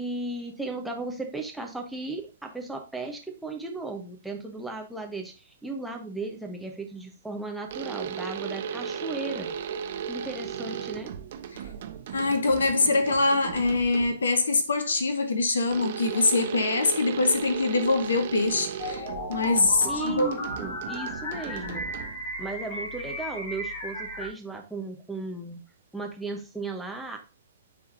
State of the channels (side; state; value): both; inverted; correlation -0.61